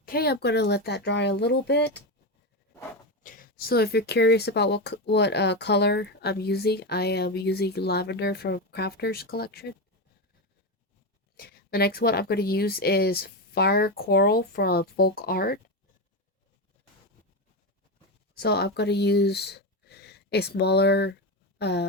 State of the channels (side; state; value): both; normal; correlation 0.14